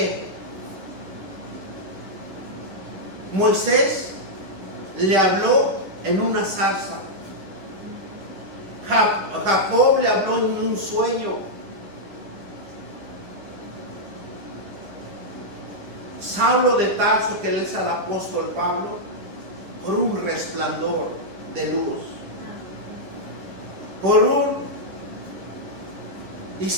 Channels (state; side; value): late; left; 10 ms